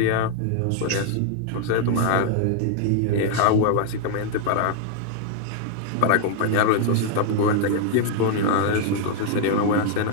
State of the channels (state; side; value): different; both; correlation 0.00